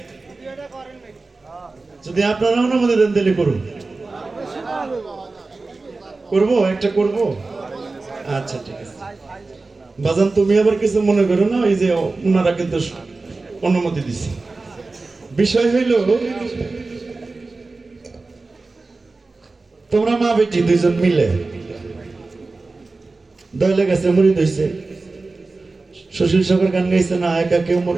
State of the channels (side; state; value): left; quieter; 3.6 dB